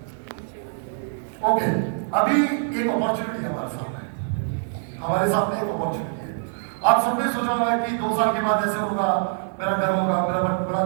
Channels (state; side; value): silent; left; 57 dB below the other